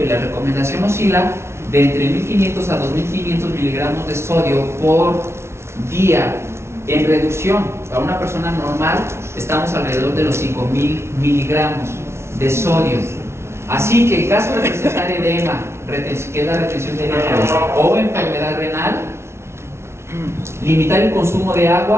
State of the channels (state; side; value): late; left; 0.13 ms